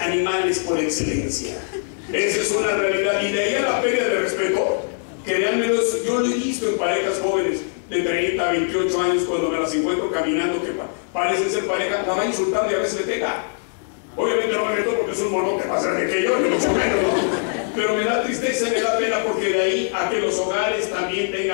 por excelencia. Esa es una realidad. Y de ahí a la pérdida de respeto, créanme, yo lo he visto en parejas jóvenes de 30, 28 años, cuando me las encuentro caminando, que parecen ser pareja, la va insultando y a veces le pega. Obviamente no me meto porque es un monote más grande que yo, ni mucho menos, ¿no? Pero me da tristeza y me da pena, porque de ahí a que los hogares también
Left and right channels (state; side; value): silent; right; digital silence